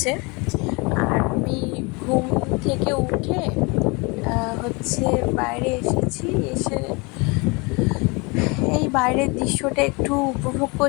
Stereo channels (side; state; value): right; quieter; 28.4 dB